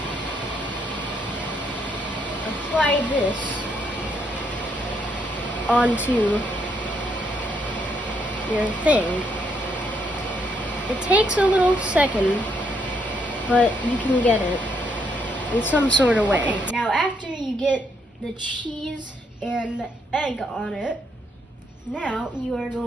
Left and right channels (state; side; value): normal; both; correlation 0.74